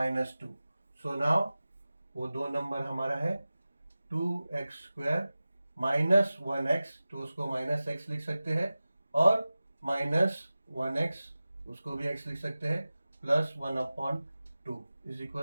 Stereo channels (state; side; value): inverted; both; correlation -0.96